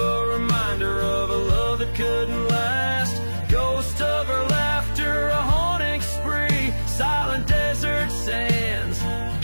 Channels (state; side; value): inverted; both; correlation -1.00